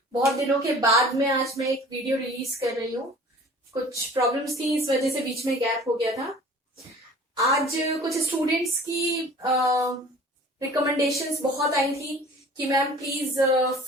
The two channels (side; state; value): both; normal; correlation 0.46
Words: बहुत दिनों के बाद में आज मैं एक वीडियो रिलीज कर रही हूँ। कुछ प्रॉब्लम्स थी, इस वजह से बीच में गैप हो गया था। आज कुछ स्टूडेंट्स की रिकमेंडेशंस बहुत आई थी कि ma'am please